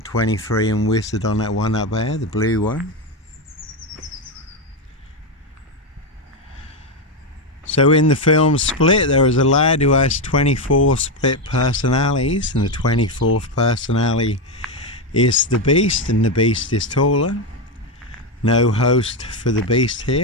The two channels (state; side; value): normal; both; correlation 0.08